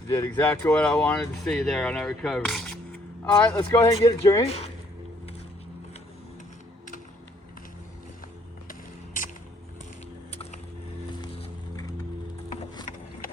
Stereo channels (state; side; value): normal; both; correlation 0.65